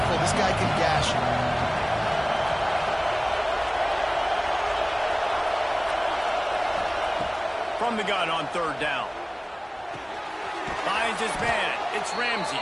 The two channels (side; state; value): both; identical; correlation 1.00